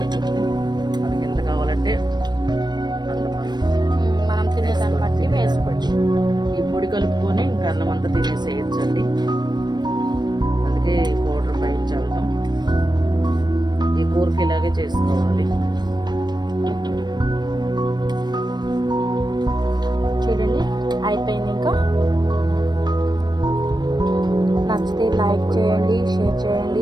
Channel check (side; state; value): left; late; 0.21 ms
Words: మనకి ఎంత కావాలంటే అంత మనం తినేదాన్ని బట్టి వేసుకోవచ్చు. ఈ పొడి కలుపుకొని ఇంకా అన్నం అంతా తినేసేయచ్చండి. అందుకే పౌడర్ పైన చల్లుతాం. ఈ కూరకి ఇలాగే చేసుకోవాలి. చూడండి అయిపోయింది. ఇంకా నచ్చితే లైక్ చేయండి, షేర్